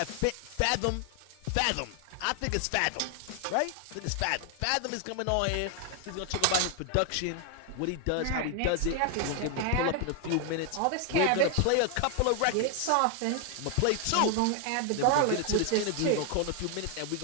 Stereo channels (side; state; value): both; different; correlation 0.00